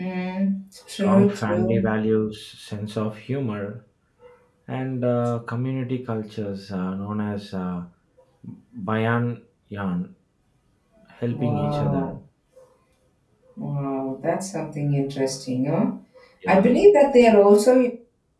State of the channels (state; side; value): identical; both; correlation 1.00